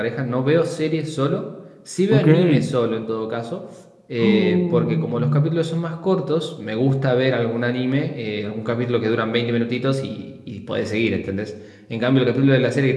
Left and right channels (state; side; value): identical; both; correlation 1.00